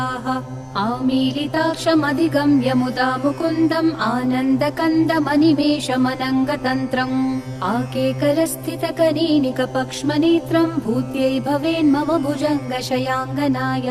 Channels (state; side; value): identical; both; correlation 1.00